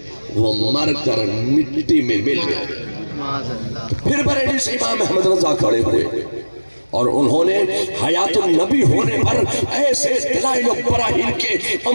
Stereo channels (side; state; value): both; inverted; correlation -1.00